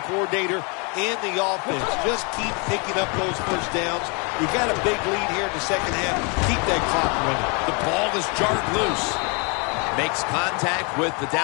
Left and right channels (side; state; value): right; quieter; 33.5 dB